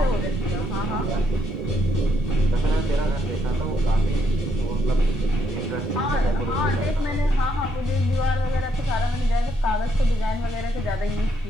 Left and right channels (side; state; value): both; normal; correlation 0.75